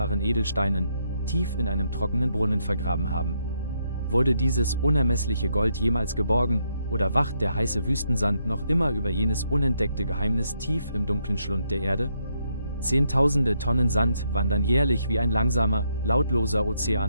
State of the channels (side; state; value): both; inverted; correlation -0.77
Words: Edelsteinen, tief in einem trockenen Brunnen vergraben haben. Wurde dieses unermessliche Gold jemals geborgen, oder wacht der heiße Wüstensand noch immer über jenes unentdeckte Geheimnis tief im dunklen Schlund der Erde? Zehntausende Tonnen Sand wandern jährlich wie ein langsamer, lautloser